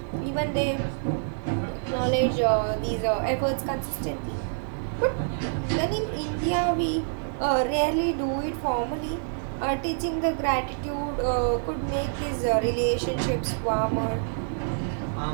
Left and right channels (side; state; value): left; silent; 60 dB below the other